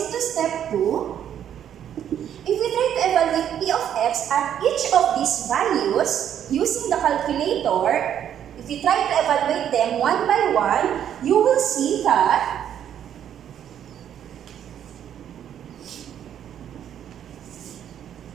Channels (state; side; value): quieter; left; 9.7 dB